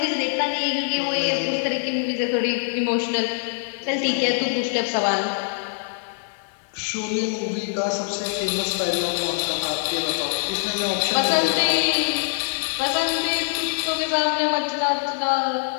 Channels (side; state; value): right; silent; 63 dB below the other